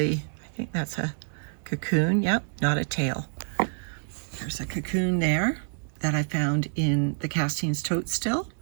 I think that's a cocoon. Yep, not a tail. There's a cocoon there that I found in the castings tote still.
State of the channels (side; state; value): left; silent; 60 dB below the other